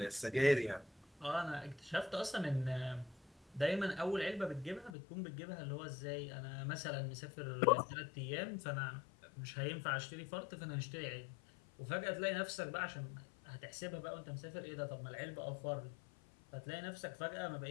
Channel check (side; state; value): right; drops out; at 5.0 s